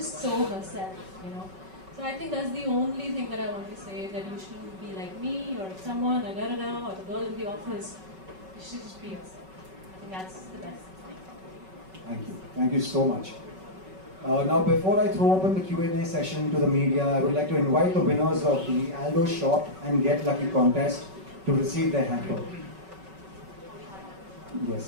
so herself, So I think that's the only thing that I want to say, that you shouldn't be like me, or someone, or da-da-da, or the girl in the office. You should just be yourself. I think that's the best thing. Thank you. Thank you so much. Now, before I throw open the Q&A session to the media, I would like to invite the winners of the Aldo Shop and Get Lucky contest to receive their hamper.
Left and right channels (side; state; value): left; late; 5.3 ms